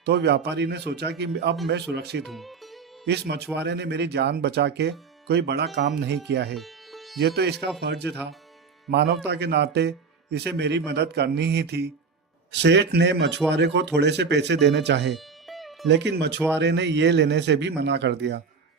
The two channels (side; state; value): left; quieter; 5.2 dB